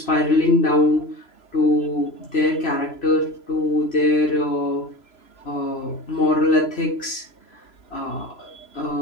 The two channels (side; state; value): right; late; 3.0 ms